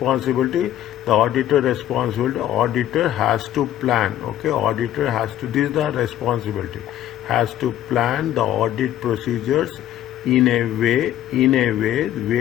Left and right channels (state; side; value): quieter; right; 12.1 dB